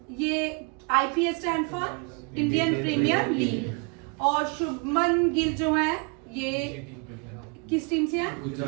ये IPL stand for Indian premier league. और शुभमन गिल जो है ये किस टीम से है?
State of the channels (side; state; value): left; quieter; 33.1 dB